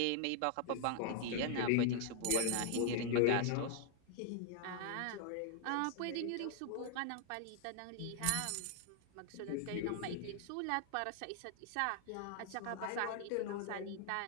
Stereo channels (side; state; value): both; different; correlation 0.00